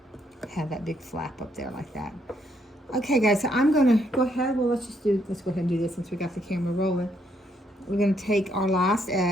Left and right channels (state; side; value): normal; both; correlation 0.73